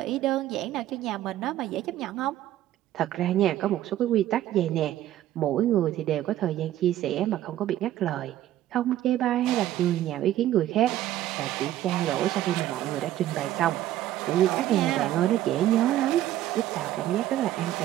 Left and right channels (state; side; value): quieter; left; 13.3 dB